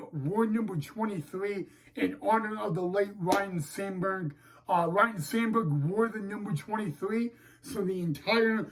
wore number 23 in honor of the late Ryan Sandberg. Ryan Sandberg wore the number 23, so the entire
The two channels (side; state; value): both; identical; correlation 1.00